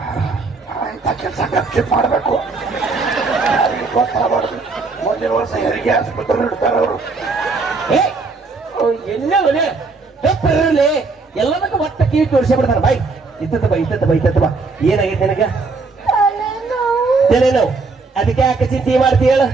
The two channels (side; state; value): left; quieter; 4.0 dB